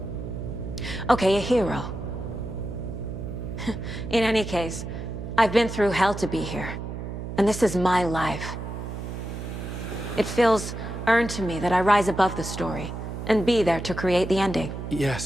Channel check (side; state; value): right; noise; hum, 7 dB below the sound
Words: Okay, a hero. In any case, I've been through hell to be here. And this is my life. It feels earned to me that I rise above the story and be there to create the ending.